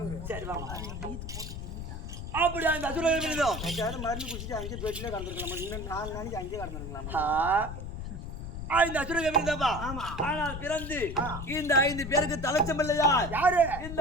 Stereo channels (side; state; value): left; noise; rumble, 7 dB below the sound